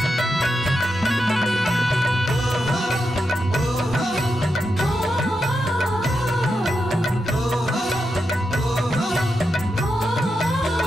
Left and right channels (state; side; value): normal; both; correlation 0.86